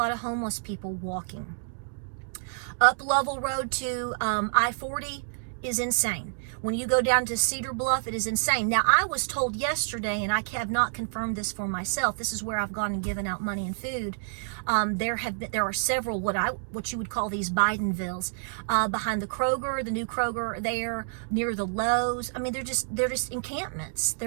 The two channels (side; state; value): left; silent; digital silence